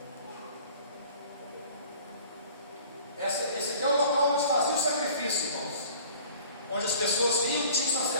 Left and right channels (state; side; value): inverted; both; correlation -0.47